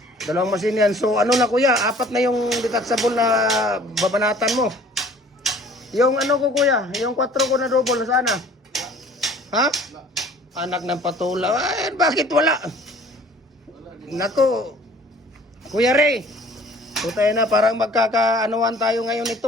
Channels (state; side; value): normal; both; correlation 0.51